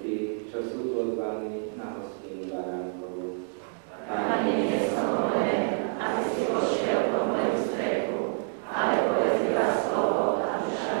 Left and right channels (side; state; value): left; silent; 57 dB below the other